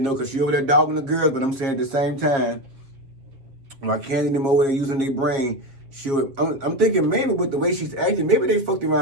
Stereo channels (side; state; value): left; late; 7.3 ms